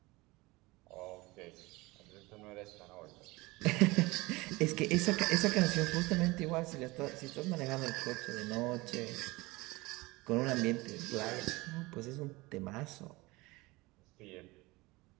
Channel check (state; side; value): quieter; left; 22.3 dB